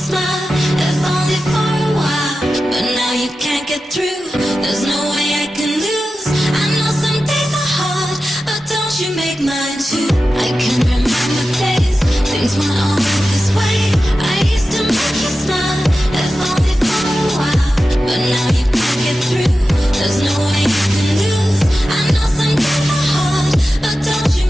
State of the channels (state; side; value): normal; both; correlation 0.93